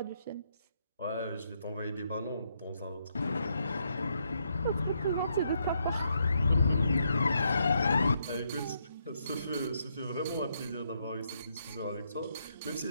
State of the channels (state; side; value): inverted; both; correlation -0.77